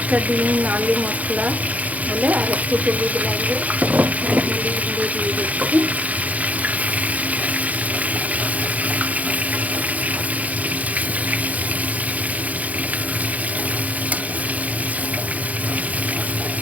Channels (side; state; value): left; late; 0.072 ms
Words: ডিম আলু মশলা হলে আর একটু হলুদ লাগবে, হলুদ গুঁড়ো দিয়ে দিচ্ছি।